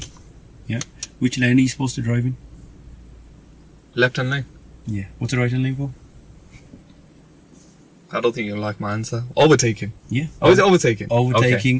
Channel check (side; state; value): both; identical; correlation 1.00